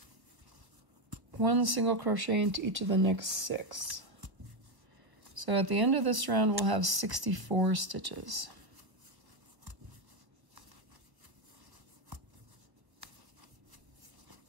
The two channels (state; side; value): late; left; 1.2 ms